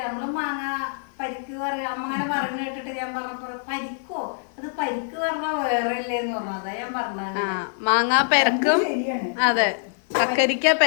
നമ്മള് മാങ്ങ പരിക്ക് പറയാ അമ്മങ്ങനെ പറഞ്ഞു കേട്ടിട്ട് ഞാൻ പറഞ്ഞപ്പോ പരിക്കോ അത് പരിക്ക് പറഞ്ഞാ വേറെ ഇല്ലേന്ന് പറഞ്ഞു. അതാ ഞാൻ പറഞ്ഞത്. മാങ്ങ പെരക്കും അതെ കക്കരിക്ക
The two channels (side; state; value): right; silent; 55 dB below the other